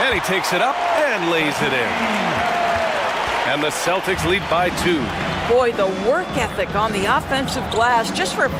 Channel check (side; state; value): both; identical; correlation 1.00